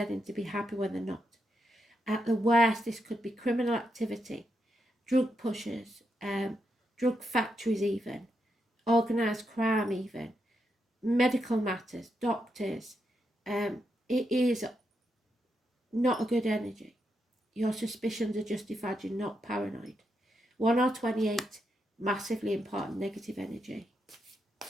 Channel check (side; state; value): both; normal; correlation 0.83